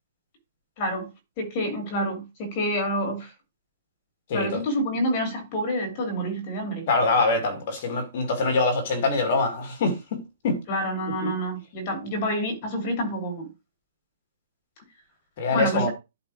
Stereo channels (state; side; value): inverted; both; correlation -0.40